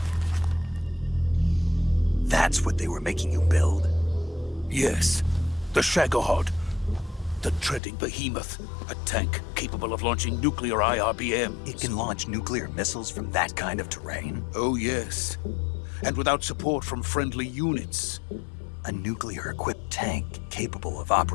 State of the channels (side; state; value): right; drops out; at 7.8 s